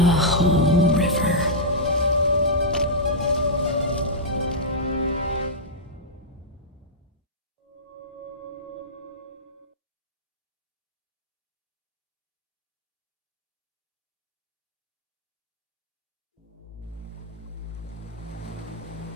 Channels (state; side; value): normal; both; correlation -0.11